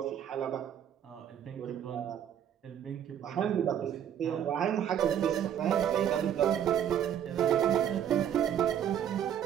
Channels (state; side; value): quieter; left; 9.6 dB